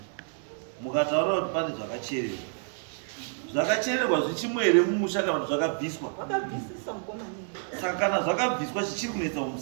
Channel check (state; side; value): silent; left; 57 dB below the other